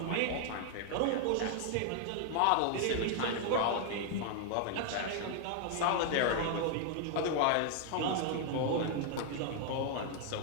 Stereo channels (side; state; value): both; different; correlation 0.00